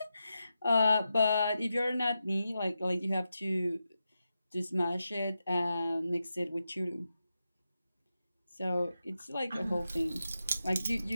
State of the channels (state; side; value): inverted; both; correlation -0.89